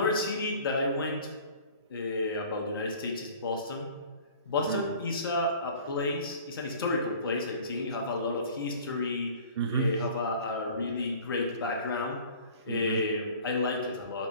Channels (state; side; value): inverted; both; correlation -0.46